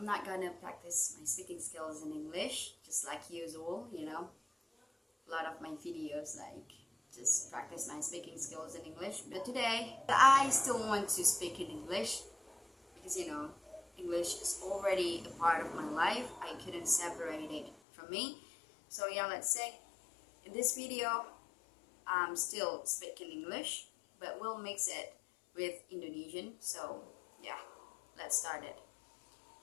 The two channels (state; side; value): drops out; right; at 17.8 s